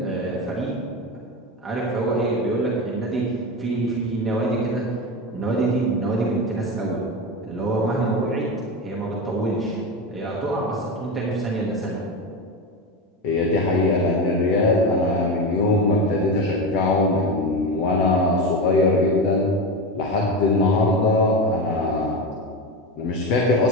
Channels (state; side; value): normal; both; correlation 0.19